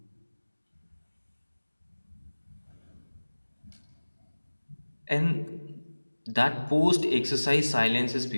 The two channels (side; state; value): both; inverted; correlation -1.00